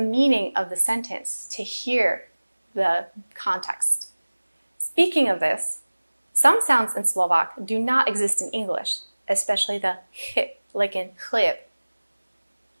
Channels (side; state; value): both; inverted; correlation -1.00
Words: of the sentence to hear the context. Speaking of this, some sounds in Slovak do not exist in English, especially the h, like in chleb.